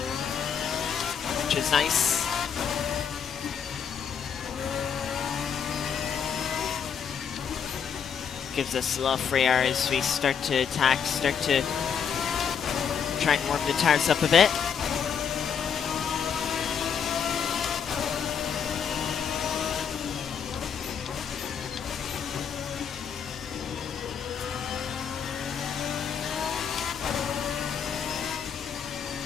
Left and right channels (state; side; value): quieter; right; 7.3 dB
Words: which is nice. Gives us a lot of free air as we start to attack, start to try and warm the tires up a bit.